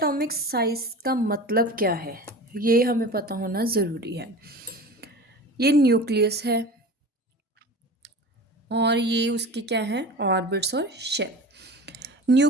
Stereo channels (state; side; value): normal; both; correlation 0.34